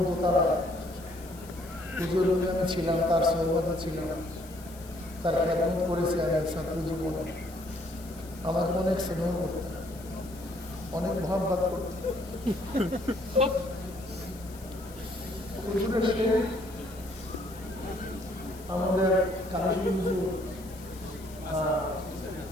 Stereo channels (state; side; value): noise; left; hiss, 20 dB below the sound